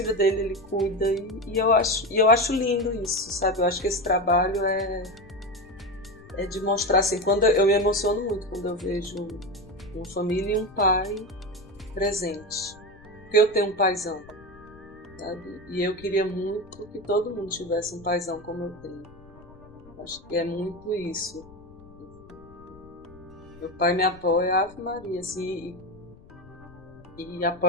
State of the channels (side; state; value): left; noise; rumble, 23 dB below the sound